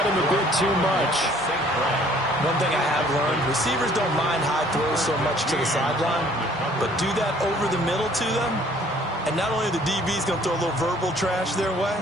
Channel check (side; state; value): both; normal; correlation 0.57